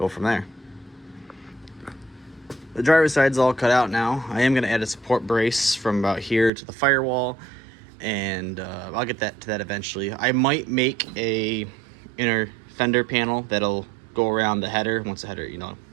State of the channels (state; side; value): drops out; left; at 6.5 s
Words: from there. The driver's side's all cut out now. I am going to add a support brace from about here to the firewall, and I'll get to that eventually. I might make a inner fender panel that'll go around the header once the header, you know,